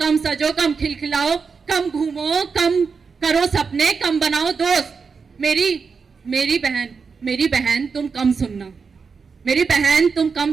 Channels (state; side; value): quieter; left; 5.3 dB